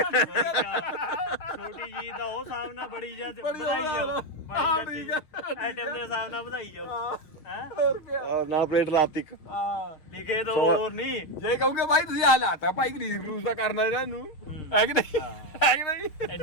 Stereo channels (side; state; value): right; late; 6.5 ms